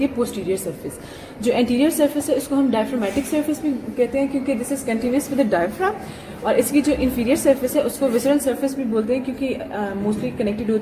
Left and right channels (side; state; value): both; identical; correlation 1.00